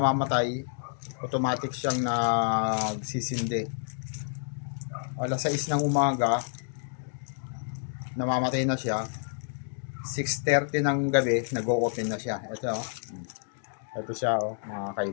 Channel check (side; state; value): right; silent; digital silence